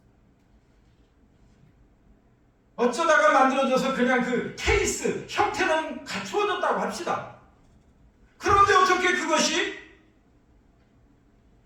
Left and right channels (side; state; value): both; identical; correlation 1.00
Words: 어쩌다가 만들어져서 그냥 그 케이스 형태는 갖추어졌다고 합시다. 그런데 어떻게 그것이